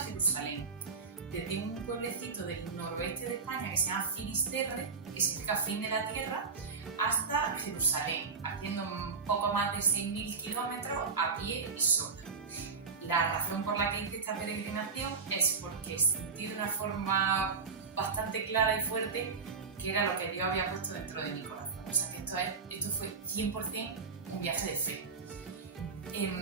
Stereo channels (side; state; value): left; quieter; 5.0 dB